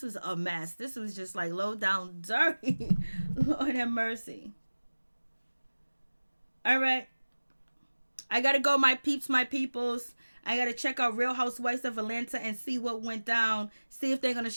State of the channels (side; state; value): both; inverted; correlation -1.00